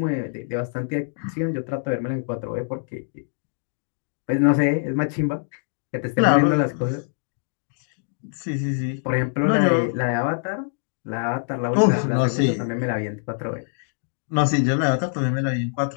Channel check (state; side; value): silent; right; digital silence